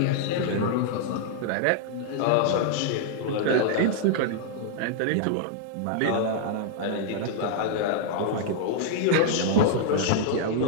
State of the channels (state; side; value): different; both; correlation -0.01